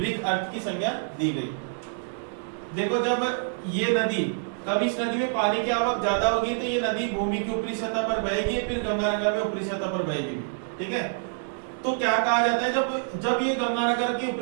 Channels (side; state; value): left; silent; digital silence